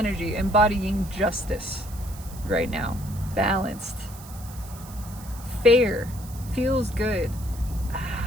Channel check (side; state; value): right; noise; hiss, 18 dB below the sound